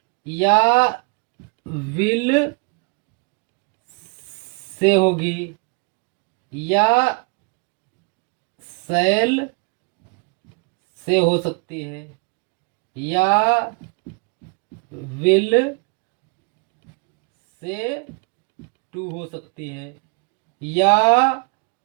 या विल से होगी, या सेल से हो सकती है, या विल से टू हो सकती है, या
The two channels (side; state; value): left; quieter; 31.8 dB